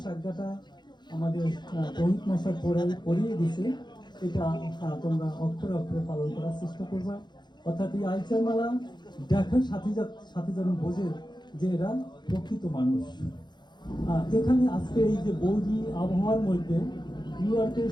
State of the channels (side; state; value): right; late; 0.21 ms